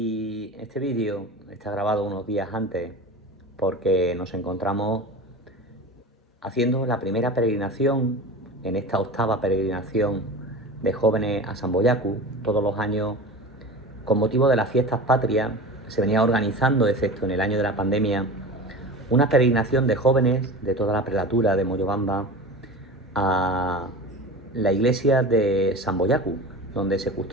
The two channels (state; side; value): normal; both; correlation 0.33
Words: este vídeo está grabado unos días antes porque nos encontramos haciendo la primera peregrinación en esta octava peregrinación de jóvenes a Samboyacu. Todos los años, con motivo de las fiestas patrias, se venía organizando, excepto en el año de la pandemia, una peregrinación de jóvenes de toda la prelatura de Moyobamba a la iglesia de Samboyacu, donde se